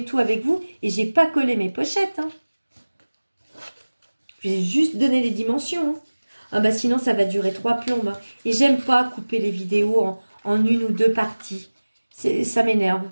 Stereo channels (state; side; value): inverted; both; correlation -1.00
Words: tout avec vous et j'ai pas collé mes pochettes. Hein. J'ai juste donné les dimensions. Hein. Ah bah sinon ça va durer 3 plombes. Hein. Et j'aime pas couper les vidéos en une ou deux parties. Ça m'énerve.